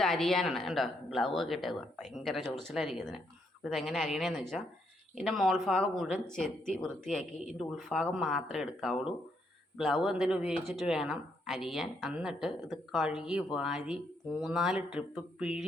അരിയാനാണ്. കണ്ടോ, ഗ്ലൗ ഒക്കെ ഇട്ടേക്കുക, ഭയങ്കര ചൊറിച്ചിലായിരിക്കും ഇതിന്. അപ്പോൾ ഇതെങ്ങനെ അരിയണേന്ന് വെച്ചാൽ ഇതിൻ്റെ മോൾഭാഗം മുഴുവൻ ചെത്തി വൃത്തിയാക്കി ഇതിൻ്റെ ഉൾഭാഗം മാത്രമേ എടുക്കാവുള്ളൂ. ഗ്ലൗ എന്തെങ്കിലും ഉപയോഗിച്ചിട്ട് വേണം അരിയാൻ. എന്നിട്ട് ഇത് കഴുകി വാരി 3-4 ട്രിപ്പ്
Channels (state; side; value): normal; both; correlation 0.75